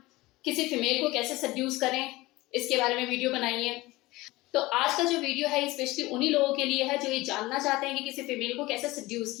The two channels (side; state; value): right; quieter; 20.0 dB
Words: किसी फीमेल को कैसे सेड्यूस करें, इसके बारे में वीडियो बनाइए। तो आज का जो वीडियो है स्पेशली उन्हीं लोगों के लिए है जो ये जानना चाहते हैं कि किसी फीमेल को कैसे सेड्यूस